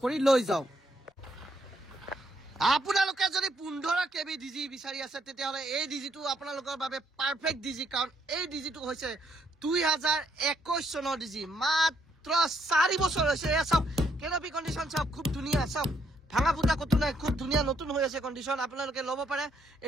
करि लई जाओ আপোনালোকে যদি 15 কেবি ডিজি বিচাৰি আছে তেতিয়াহলে এই ডিজিটো আপোনালোকৰ বাবে পাৰফেক্ট ডিজি কাৰণ এই ডিজিটো হৈছে 2021 চনৰ ডিজি মাত্ৰ 4 বছৰ হৈছে এ সব কেনপি কন্ডিশন সব খুব ধুনিয়া সব ভাঙা ফুটা কত নাই খুব ধুনিয়া নতুন হৈ আছে কন্ডিশন আপোনালোকে লব পাৰে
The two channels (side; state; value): both; normal; correlation 0.73